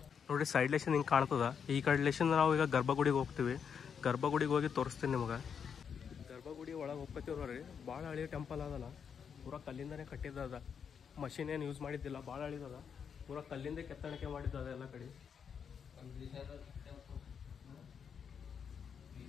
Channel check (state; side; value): quieter; right; 7.0 dB